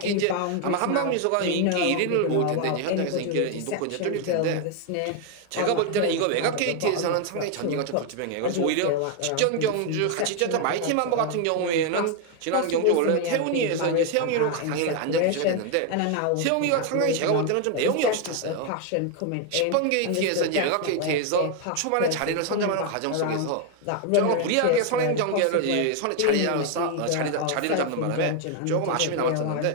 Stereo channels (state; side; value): different; both; correlation 0.01